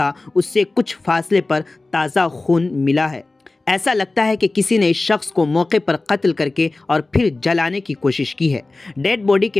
उससे कुछ फासले पर ताज़ा खून मिला है। ऐसा लगता है कि किसी ने इस शख्स को मौके पर कत्ल करके और फिर जलाने की कोशिश की है। डेड बॉडी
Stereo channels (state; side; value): quieter; right; 3.2 dB